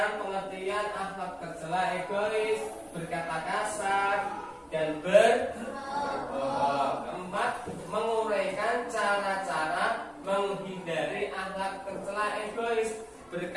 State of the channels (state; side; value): identical; both; correlation 1.00